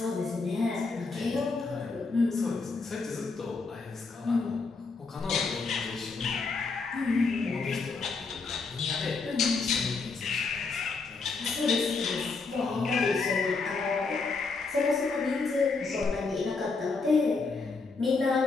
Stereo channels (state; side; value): quieter; right; 4.2 dB